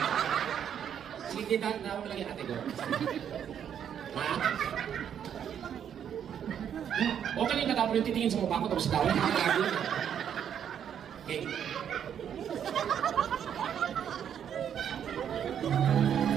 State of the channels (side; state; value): left; quieter; 8.8 dB